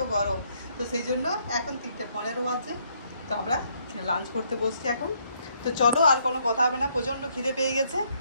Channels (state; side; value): inverted; both; correlation -0.70